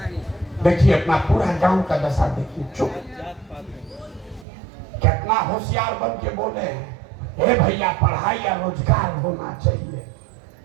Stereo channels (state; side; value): drops out; left; at 4.5 s